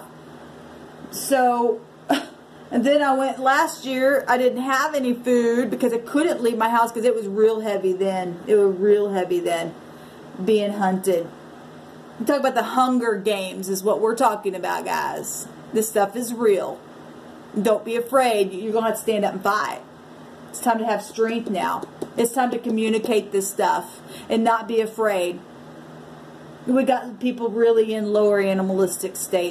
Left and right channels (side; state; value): both; identical; correlation 1.00